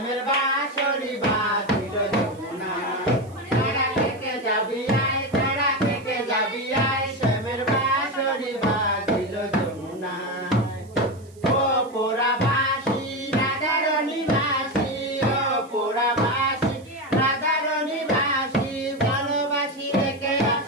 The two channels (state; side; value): noise; right; hiss, 28 dB below the sound